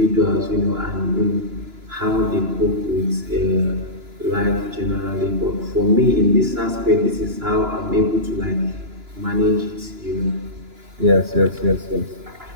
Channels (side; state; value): left; late; 2.9 ms